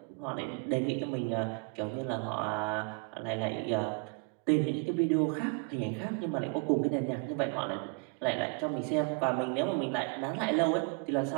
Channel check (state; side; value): quieter; left; 32.1 dB